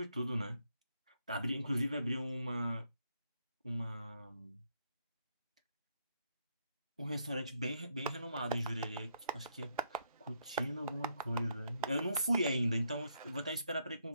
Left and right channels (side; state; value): both; inverted; correlation -0.75